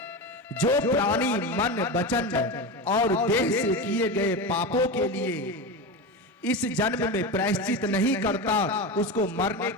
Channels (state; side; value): normal; both; correlation 0.21